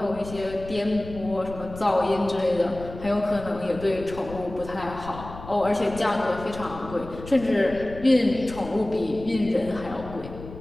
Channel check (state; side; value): noise; left; rumble, 14 dB below the sound